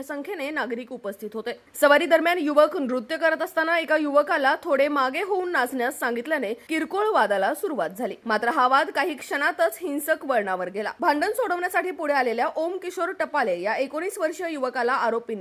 संख्येने नागरिक उपस्थित होते. सवारी दरम्यान युवक नृत्य करत असताना एका युवकाला थोडे मागे होऊन नाचण्यास सांगितल्याने किरकोळ वादाला सुरुवात झाली. मात्र हा वाद काही क्षणातच हिंसक वळणावर गेला. भांडण सोडवण्यासाठी पुढे आलेल्या ओम किशोर टपाले या 19 वर्षीय युवकाला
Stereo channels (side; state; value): both; identical; correlation 1.00